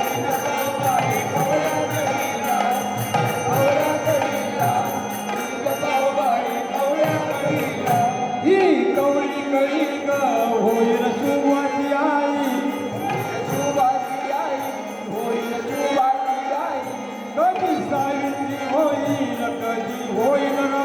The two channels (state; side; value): identical; both; correlation 1.00